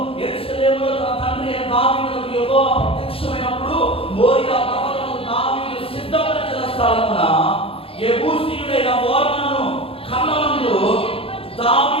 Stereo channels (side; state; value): right; late; 0.27 ms